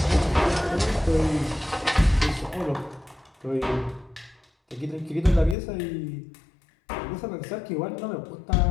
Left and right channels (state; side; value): drops out; right; at 5.6 s